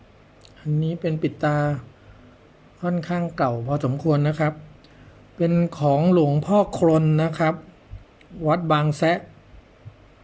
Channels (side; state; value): both; identical; correlation 1.00